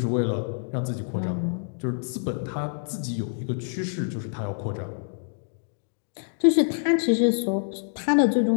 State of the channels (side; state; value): right; silent; digital silence